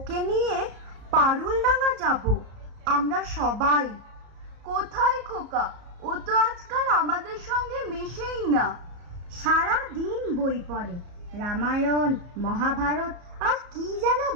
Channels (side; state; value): left; late; 34 ms